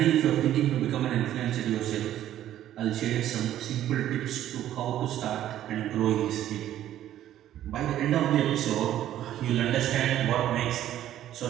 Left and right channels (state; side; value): quieter; left; 12.2 dB